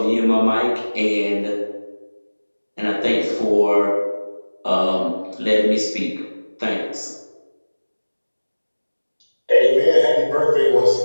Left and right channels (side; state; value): both; inverted; correlation -1.00